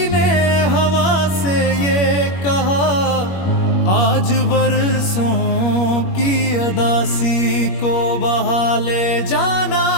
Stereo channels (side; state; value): right; late; 21 ms